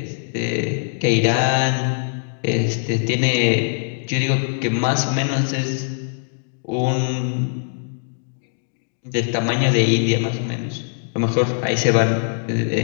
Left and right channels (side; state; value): right; silent; digital silence